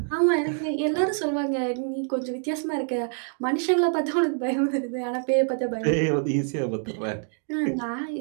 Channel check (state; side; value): silent; left; 56 dB below the other